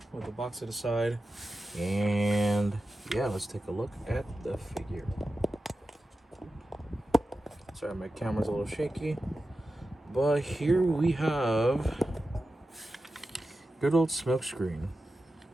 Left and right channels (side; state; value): both; normal; correlation 0.92